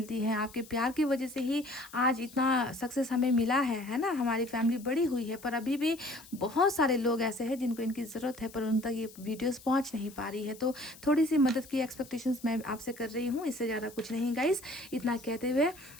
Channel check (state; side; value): noise; left; hiss, 20 dB below the sound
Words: है। आपके प्यार की वजह से ही आज इतना सक्सेस हमें मिला है ना। हमारी फैमिली बड़ी हुई है, पर अभी भी बहुत सारे लोग ऐसे हैं जिनको इनकी ज़रूरत है, पर उन तक ये वीडियोस पहुंच नहीं पा रही है। तो थोड़ी सी मदद की एक्सपेक्टेशंस मैं आपसे कर रही हूँ, इससे ज़्यादा कुछ नहीं गाइस। इतना कहते हुए